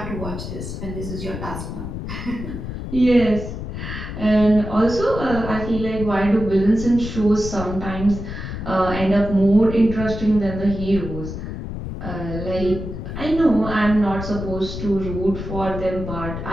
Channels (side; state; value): left; noise; rumble, 7 dB below the sound